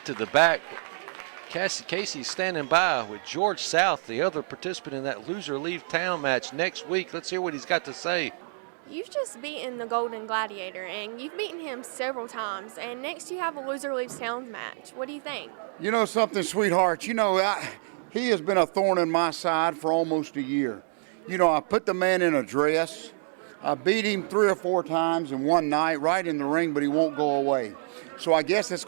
to the back. Casey's standing by with George South, the other participant in that loser leave town match next week. Let's hear what he's got to say. You've just beaten the Golden Gladiator, and you've beaten him several times. And next you have a loser leaves town match. What do you think? You know something, sweetheart? You know, he has been a thorn in my side for almost a year. You know, I put the man in a dress. I beat him 3 or 4 times in one night right in the ring, but he won't go away. So I guess it's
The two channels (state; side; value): silent; left; digital silence